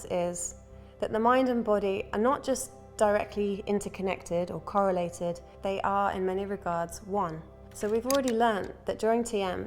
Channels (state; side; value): identical; both; correlation 1.00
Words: is that the mind and body are not just directly interconnected or correlated, they are in many regards one. So we've already learned that during